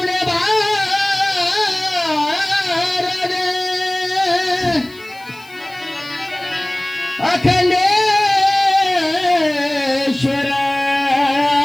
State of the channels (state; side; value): noise; left; hiss, 25 dB below the sound